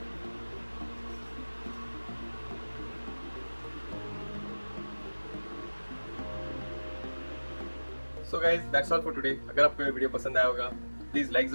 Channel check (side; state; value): both; inverted; correlation -1.00